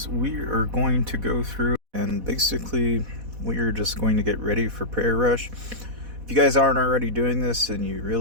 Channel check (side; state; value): left; late; 4.1 ms